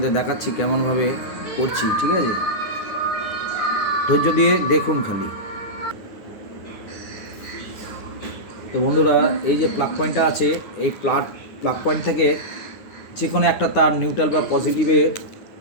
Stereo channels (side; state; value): right; late; 9.5 ms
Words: দেখাচ্ছি কেমনভাবে করছি। ঠিক আছে, ধৈর্য দিয়ে দেখুন খালি। তো বন্ধুরা, এই যে প্লাগ পয়েন্টটা আছে, এই প্লাগ পয়েন্ট থেকে যে কোনো একটা তার নিউট্রাল বা পজিটিভে